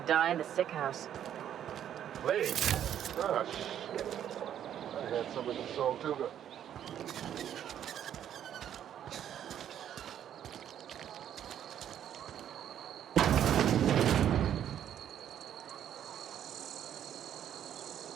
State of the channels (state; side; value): quieter; left; 10.1 dB